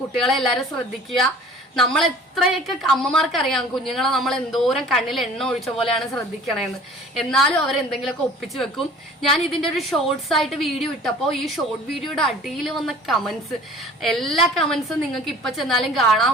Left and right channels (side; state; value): both; normal; correlation 0.47